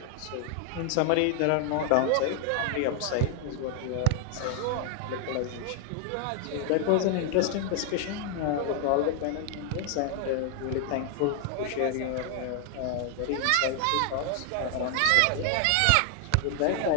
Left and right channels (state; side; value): different; both; correlation 0.00